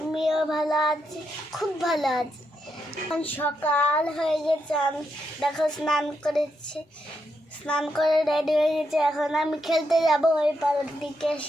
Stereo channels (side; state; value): both; normal; correlation 0.81